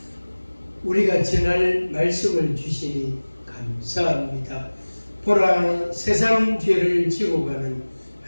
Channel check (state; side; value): inverted; both; correlation -1.00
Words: 우리가 전할 말씀을 주시니 감사합니다. 보라, 세상 죄를 지고 가는